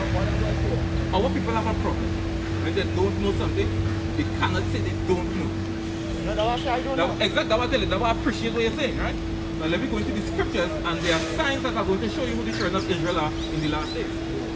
Our people have a problem. When they don't know something, they cannot say they don't know. No, that's what I don't know. Exactly, that's what I tell you. That's what I appreciate what you're saying, right? Now let me go into the scriptures, and there are signs that are going to show you who the children of Israel are in the last days.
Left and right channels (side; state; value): both; identical; correlation 1.00